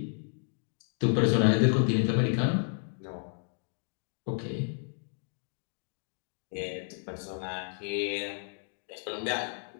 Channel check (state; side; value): silent; right; 57 dB below the other